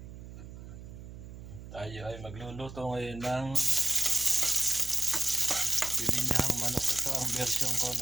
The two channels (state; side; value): noise; right; hum, 14 dB below the sound